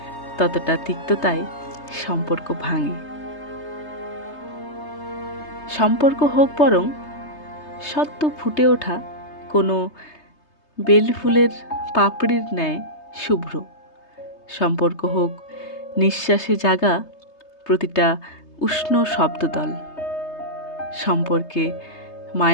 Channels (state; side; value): late; right; 3.3 ms